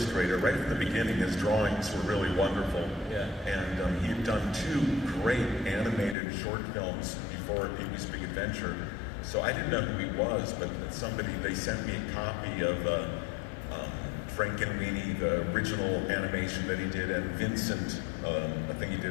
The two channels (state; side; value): drops out; right; at 6.2 s